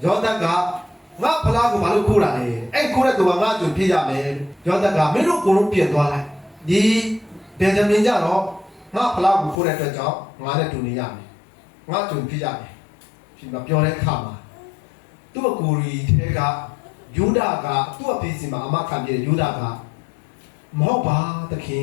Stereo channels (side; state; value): right; drops out; at 9.6 s